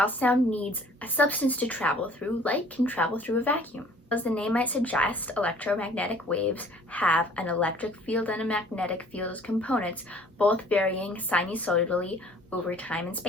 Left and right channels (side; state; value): both; normal; correlation 0.54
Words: sound needs a substance to travel through, light can travel through a vacuum. As the name might suggest, electromagnetic waves have an electric field and a magnetic field as components, both varying sinusoidally over time and